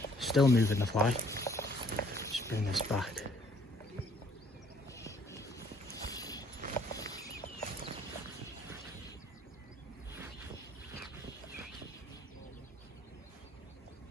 Still moving the fly. Just bring this back.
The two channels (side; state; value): both; normal; correlation 0.62